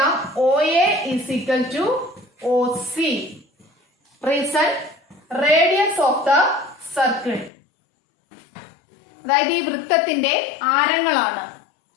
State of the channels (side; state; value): right; drops out; at 7.5 s